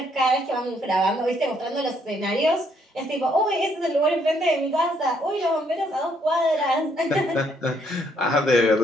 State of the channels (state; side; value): normal; both; correlation 0.70